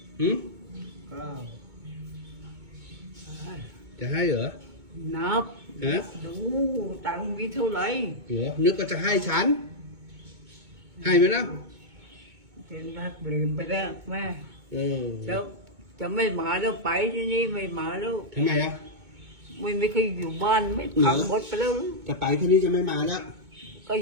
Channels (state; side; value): late; left; 2.2 ms